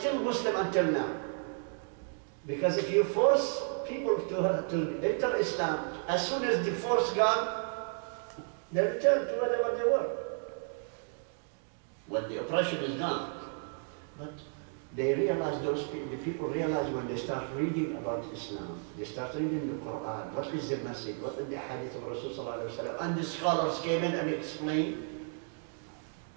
Muslim until now. Because if you force people to enter Islam, as soon as the force gone, they return to whatever they were. When the oppression is gone. But they realize, the people realize when they start reading about Islam, they start reading the Quran, what is the message, what is the hadith of Rasulullah, and the scholars came in and explained.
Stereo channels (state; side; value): silent; left; 56 dB below the other